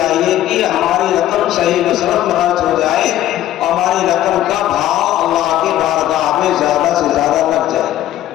کہ ہماری رقم صحیح مصرف میں خرچ ہو جائے اور ہماری رقم کا بھاؤ اللہ کی بارگاہ میں زیادہ سے زیادہ لگ جائے.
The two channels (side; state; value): right; quieter; 13.1 dB